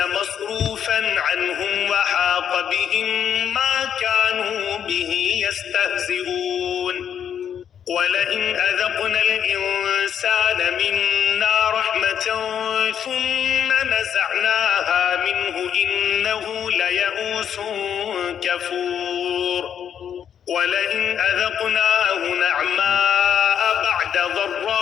عنهم وحاق بهم ما كانوا به يستهزئون. ولئن أذقنا الإنسان منا رحمة ثم نزعناها منه إنه ليئوس كفور. ولئن أذقناه نعماء بعد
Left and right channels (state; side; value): quieter; right; 8.7 dB